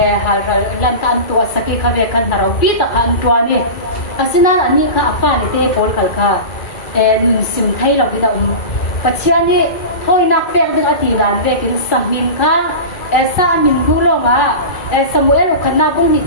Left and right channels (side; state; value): right; late; 2.4 ms